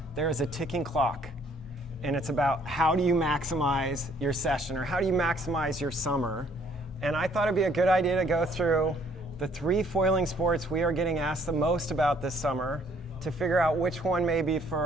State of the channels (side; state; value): both; normal; correlation 0.63